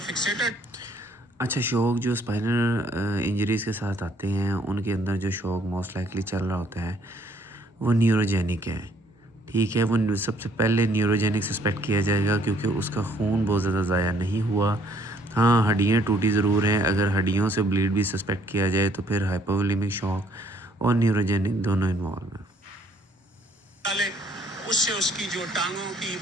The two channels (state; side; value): normal; both; correlation 0.64